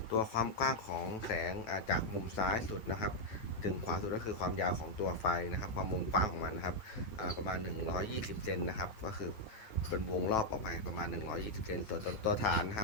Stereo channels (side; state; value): right; late; 9.1 ms